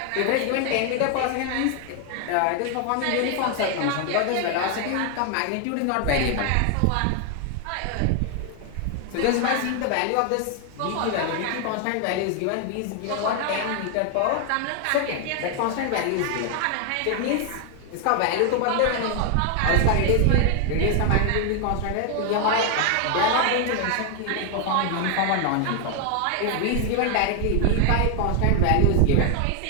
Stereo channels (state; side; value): different; both; correlation 0.00